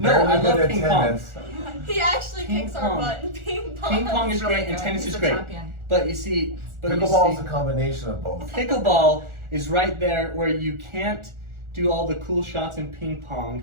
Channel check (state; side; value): late; left; 1.4 ms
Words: barely I good love at ping pong. tennis. He actually Ping kicks pong. our butt in ping pong. Ping pong is He's really great and good. tennis He's is a great. champion. But you see, Pickleball is a combination of both. pickleball is right there where you can't do all the cool shots in ping pong